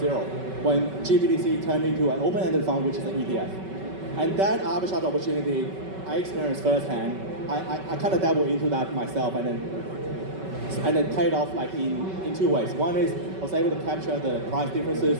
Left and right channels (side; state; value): left; late; 5.3 ms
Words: when GBTC turned into an open-ended fund, which is an ETF. And that arbitrage opportunity I experienced firsthand. I kind of dabbled into that myself and then paid off like in two ways. One is I was able to capture the price differences